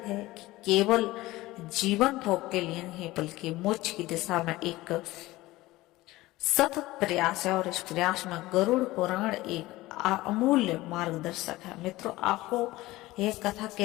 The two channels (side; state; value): right; quieter; 18.5 dB